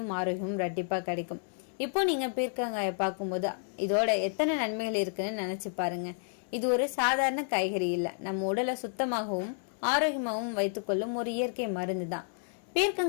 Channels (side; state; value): right; silent; digital silence